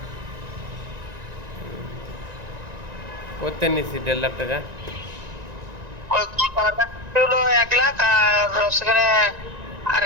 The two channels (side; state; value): left; late; 1.9 ms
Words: করতে নিছি 1.5 লাখ টাকা। ওই হলো 1 লাখ, আর সেখানে